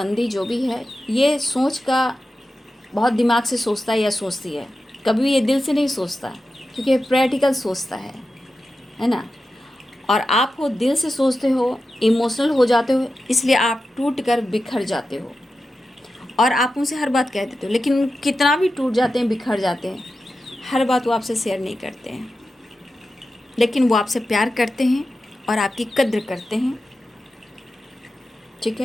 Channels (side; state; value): both; normal; correlation 0.92